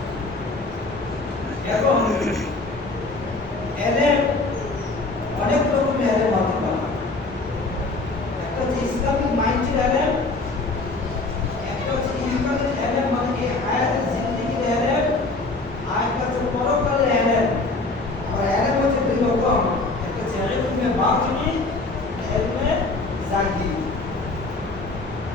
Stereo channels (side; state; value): right; quieter; 3.3 dB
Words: এবং এলেম অনেক রকমের এলেম হতে পারে। একটা হচ্ছে ইসলামিক মাইন্ডের এলেম, একটা হচ্ছে ইমানের এলেম মানে এই হায়াতের জিন্দেগির এলেম, আর একটা হচ্ছে পরকালের এলেম। আর এলেম হচ্ছে দুই রকম, একটা হচ্ছে ইলমে বাতিনি, ইলমে জাহিরি।